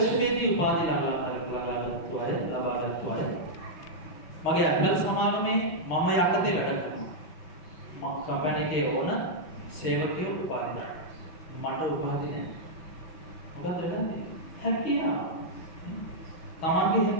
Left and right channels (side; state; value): right; late; 5.9 ms